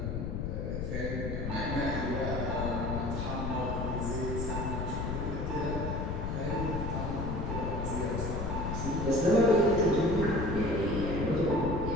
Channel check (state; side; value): noise; left; rumble, 2 dB below the sound